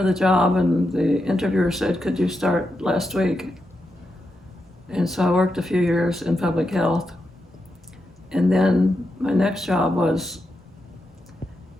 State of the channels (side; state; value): both; normal; correlation 0.86